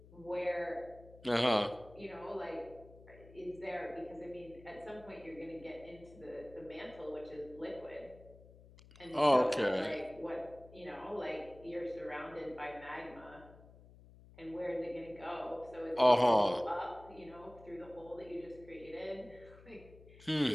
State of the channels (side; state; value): left; noise; hum, 21 dB below the sound